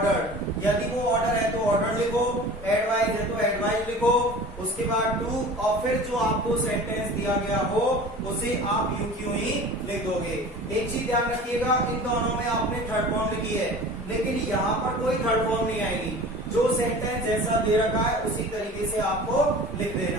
यदि वो ऑर्डर है तो ऑर्डर लिखो, एडवाइस है तो एडवाइस लिखो, उसके बाद टू, और फिर जो आपको सेंटेंस दिया गया हो उसे आप यू क्यों ही लिख दोगे। एक चीज ध्यान रखिएगा, इन दोनों में आपने थर्ड फॉर्म लिखी है, लेकिन यहाँ पर कोई थर्ड फॉर्म नहीं आएगी। जो सेंटेंस जैसा दे रखा है उसी तरीके से आपको लिख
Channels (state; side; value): normal; both; correlation 0.40